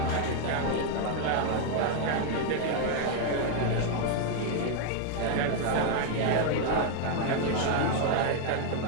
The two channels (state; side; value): different; both; correlation 0.00